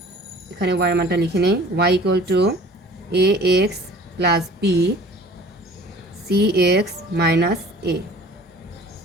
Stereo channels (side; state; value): both; normal; correlation 0.48